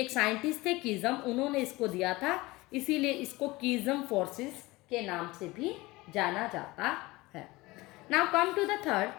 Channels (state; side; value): quieter; right; 21.0 dB